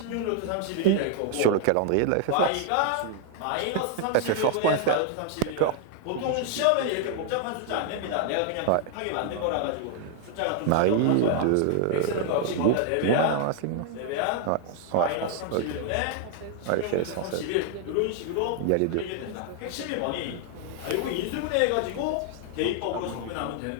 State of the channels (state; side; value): different; both; correlation 0.00